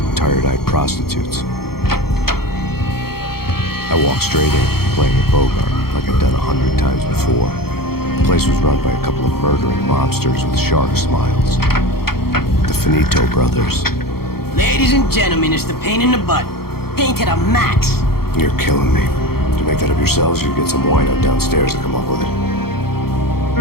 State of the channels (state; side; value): late; right; 0.95 ms